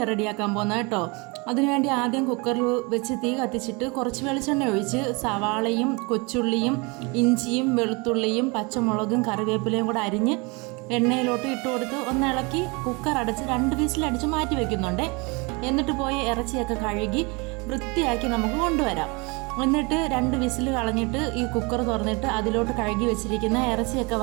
റെഡിയാക്കാൻ പോകുന്നത് കേട്ടോ. അതിനുവേണ്ടി ആദ്യം കുക്കറിൽ വെച്ച് തീ കത്തിച്ചിട്ട് കുറച്ച് വെളിച്ചെണ്ണ ഒഴിച്ച് സവാളയും കൊച്ചുള്ളിയും ഇഞ്ചിയും വെളുത്തുള്ളിയും പച്ചമുളകും കറിവേപ്പിലയും കൂടെ അരിഞ്ഞ് എണ്ണയിലോട്ട് ഇട്ട് കൊടുത്ത് ഒന്ന് ഇളക്കി കുക്കർ അടച്ച് 2 വിസിലടിച്ച് മാറ്റി വയ്ക്കുന്നുണ്ട്. എന്നിട്ട് പോയി ഇറച്ചിയൊക്കെ കഴുകി വൃത്തിയാക്കി നമുക്ക് കൊണ്ടുവരാം. എന്നിട്ട് 2 വിസിൽ കളഞ്ഞിട്ട് ഈ കുക്കർ തുറന്നിട്ട് അതിലോട്ട് കഴുകി വെച്ചിരിക്കുന്ന ഇറച്ചിയൊക്കെ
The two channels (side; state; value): left; quieter; 28.5 dB